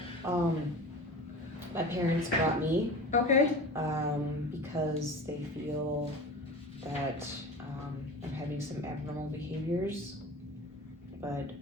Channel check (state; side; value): normal; both; correlation 0.34